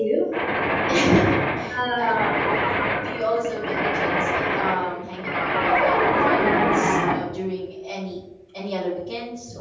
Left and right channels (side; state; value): both; identical; correlation 1.00